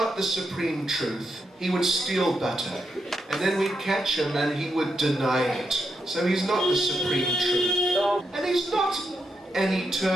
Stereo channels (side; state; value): both; normal; correlation 0.83